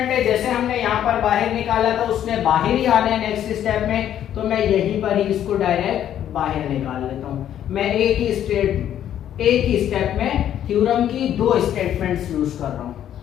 है, जैसे हमने यहाँ पर बाहर निकाला था उसने बाहर ही आना है नेक्स्ट स्टेप में, तो मैं यहीं पर ही इसको डायरेक्ट बाहर निकाल लेता हूँ। मैं एक ही स्टेप में थ्योरम की 2 स्टेटमेंट्स यूज कर रहा हूँ।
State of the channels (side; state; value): right; quieter; 10.7 dB